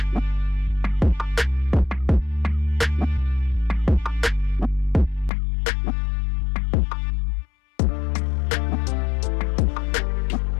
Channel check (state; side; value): drops out; right; at 5.3 s